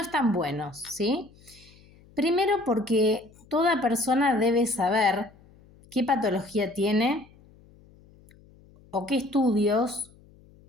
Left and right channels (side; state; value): left; noise; hum, 27 dB below the sound